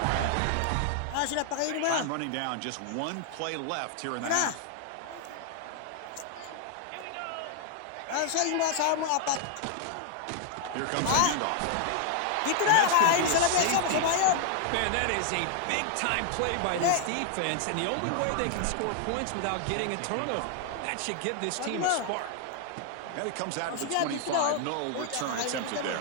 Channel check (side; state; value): both; different; correlation 0.00